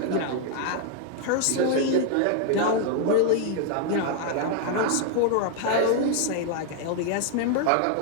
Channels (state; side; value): different; both; correlation 0.00